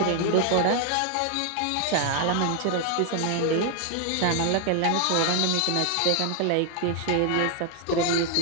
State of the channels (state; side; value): different; both; correlation 0.00